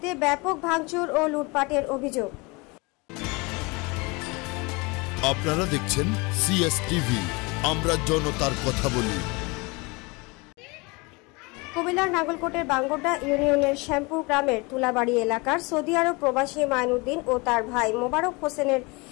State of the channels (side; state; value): right; quieter; 27.0 dB